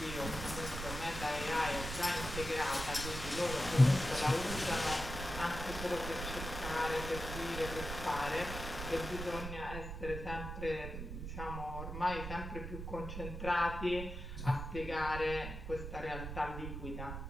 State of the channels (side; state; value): right; noise; rumble, 7 dB below the sound